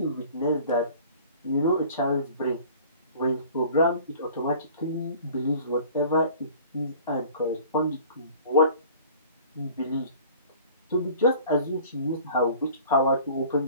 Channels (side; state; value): both; inverted; correlation -0.47